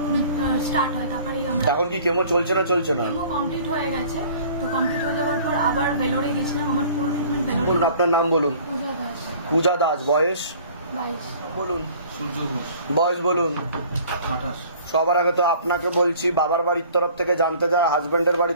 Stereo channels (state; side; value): inverted; both; correlation -0.50